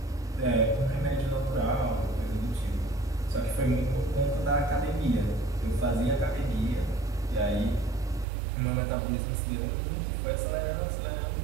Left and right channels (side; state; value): left; drops out; at 8.2 s